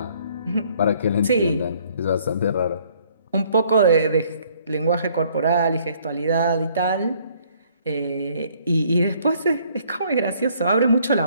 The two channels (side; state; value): both; inverted; correlation -0.62